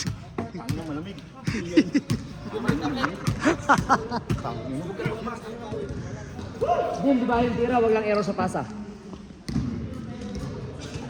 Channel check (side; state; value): both; identical; correlation 1.00